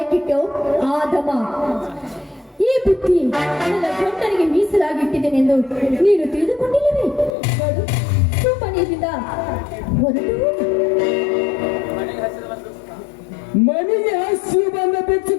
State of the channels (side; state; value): right; drops out; at 7.4 s